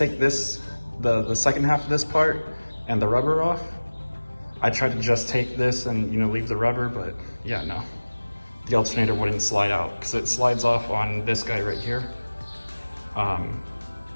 this, the second half of this part and the rubber off. I tried to just take this and, you know, leave the rubber, but yeah, no. The alternator wouldn't slide out because it slides off on this guy right here.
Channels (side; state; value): both; inverted; correlation -1.00